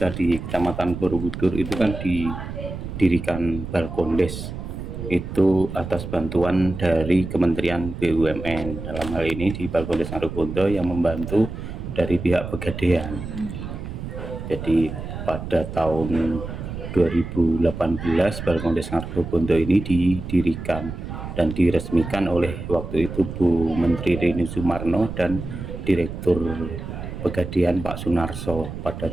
di Kecamatan Borobudur itu kan didirikan Balkondes itu atas bantuan dari Kementerian BUMN. Dalam hal ini di Balkondes Ngargogondo yang membantu dari pihak Pegadaian. Jadi pada tahun 2018 Balkondes Ngargogondo ini didirikan dan diresmikan oleh waktu itu Bu Menteri Rini Sumarno dan Direktur Pegadaian Pak Sunarso pada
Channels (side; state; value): right; noise; rumble, 8 dB below the sound